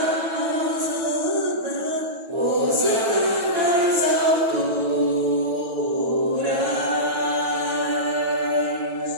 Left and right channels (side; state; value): left; late; 9.1 ms